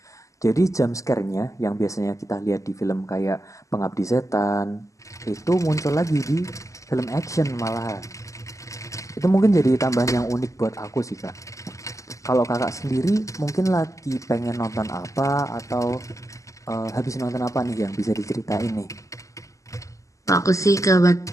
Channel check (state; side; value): late; right; 0.16 ms